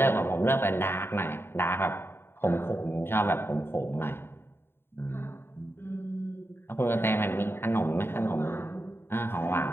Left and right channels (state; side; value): late; right; 0.11 ms